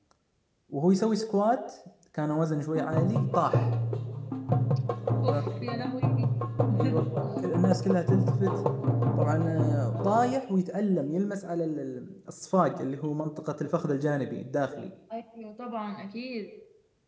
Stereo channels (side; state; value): both; identical; correlation 1.00